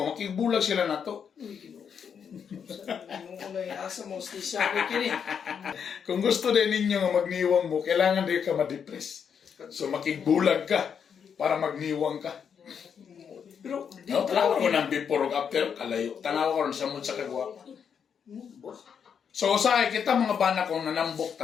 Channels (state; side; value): quieter; right; 7.3 dB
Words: makigbulag sila na to. Uy, ginoo. Ano yung asa mo, stisya ko kini. Kung gusto din ninyo nga magniwang mo, kailangan din ka ma-depress. So makigbulag ka para magniwang ka. Pero, di No, tanawa ko ng before o after, kalayo. Tanawa ko rin sa mood sa kagwapa. So sa kita mga bana kung nanambok